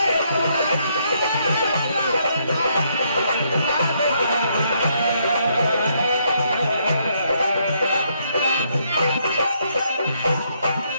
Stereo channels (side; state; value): both; inverted; correlation -0.73